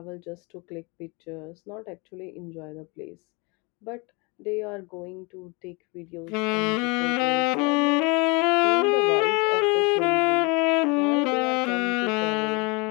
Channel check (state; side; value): quieter; right; 29.3 dB